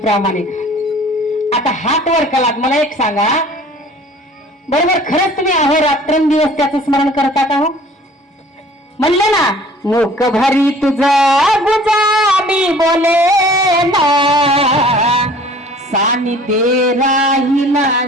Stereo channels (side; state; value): both; normal; correlation 0.50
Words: आता हात वर केलात. मला एक सांगा, बरोबर खरंच तुम्ही अहो रात्रंदिवस त्याचं स्मरण करता का? हो म्हणलं ना, मुख भरी तुझा गुजा मी बोले ना, सानिध्ये राहिला